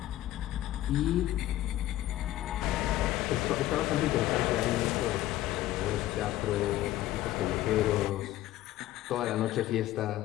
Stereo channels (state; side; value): quieter; right; 14.7 dB